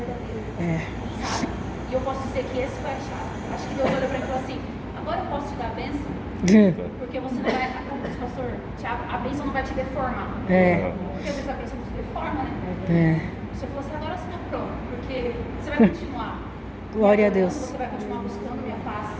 É. Sabe? E eu posso dizer que esse foi a chave. Acho que Deus olhou para mim e falou assim, agora eu posso te dar a bênção? Porque você não vai, como diz o pastor Tiago, a bênção não vai te deformar. É. Porque às vezes a bênção nos deforma, né? É. Você falou assim, agora você está pronto, porque você vai continuar. Glória a Deus. Você vai continuar buscando minha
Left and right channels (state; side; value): identical; both; correlation 1.00